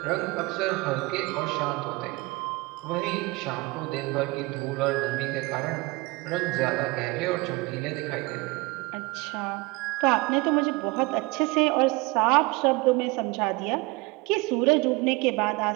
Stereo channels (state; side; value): quieter; left; 23.9 dB